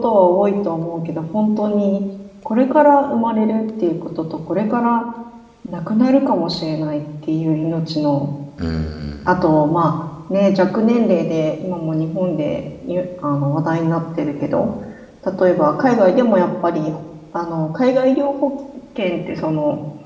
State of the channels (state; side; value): identical; both; correlation 1.00